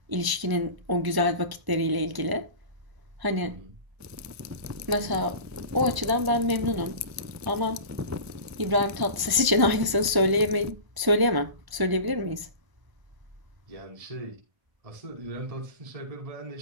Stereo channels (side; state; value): left; late; 1.1 ms